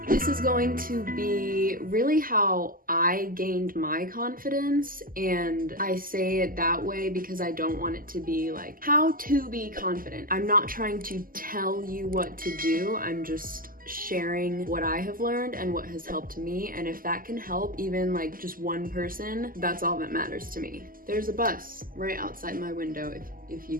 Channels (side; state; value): left; late; 0.41 ms